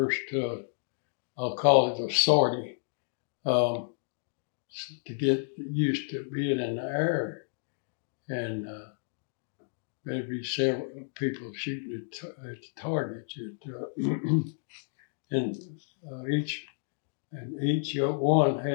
I'll call it a sortie, to get used to being in the air, and maybe several people shooting at the targets. And each one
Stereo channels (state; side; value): silent; right; digital silence